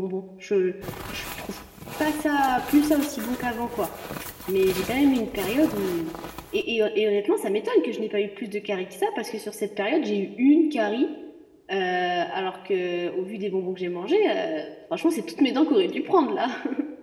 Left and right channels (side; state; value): both; identical; correlation 1.00